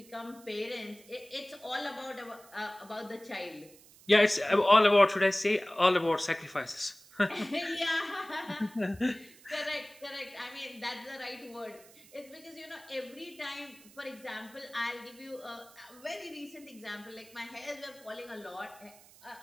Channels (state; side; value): noise; right; hiss, 23 dB below the sound